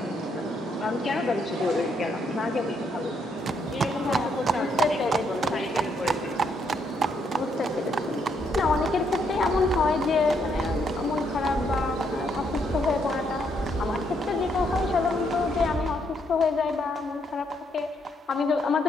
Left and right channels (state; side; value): normal; both; correlation 0.74